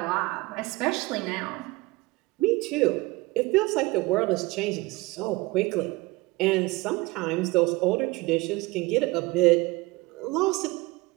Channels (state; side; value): quieter; left; 22.4 dB